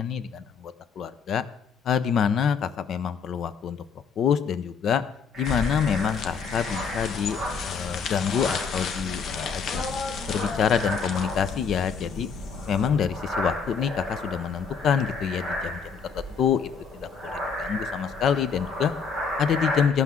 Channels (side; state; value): right; quieter; 6.0 dB